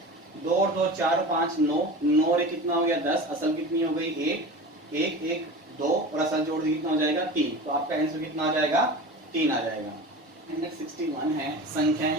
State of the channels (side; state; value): both; normal; correlation 0.33